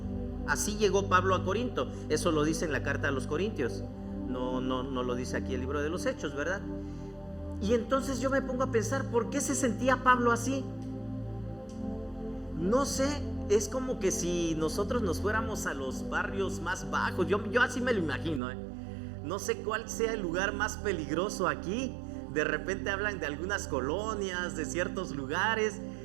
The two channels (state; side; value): drops out; left; at 18.4 s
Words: Así llegó Pablo a Corinto. Eso lo dice en la carta a los Corintios. No lo dice aquí el libro de los Hechos, ¿verdad? Y entonces yo me pongo a pensar, ¿por qué se sentía Pablo así? No sé, es como que si nosotros nos fuéramos a los barrios más bajos. Yo así me lo imagino, No sé cuál sea el lugar más peligroso aquí. De repente hablan de algunas colonias, de ciertos lugares.